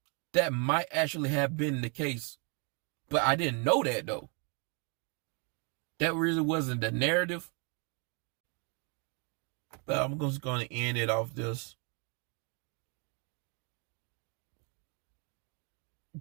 that might actually have been the case. But I didn't know that though. That really wasn't the narrative. But I'm just going to end it off this.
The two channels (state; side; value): quieter; left; 35.2 dB